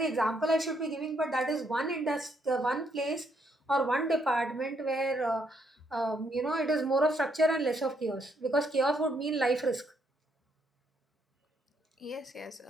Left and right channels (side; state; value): both; normal; correlation 0.73